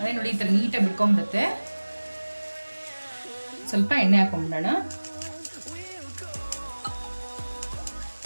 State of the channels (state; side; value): inverted; both; correlation -1.00